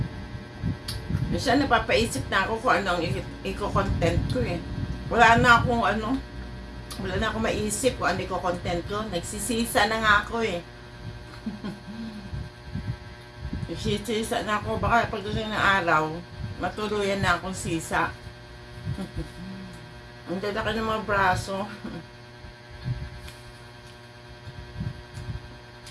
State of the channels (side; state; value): both; identical; correlation 1.00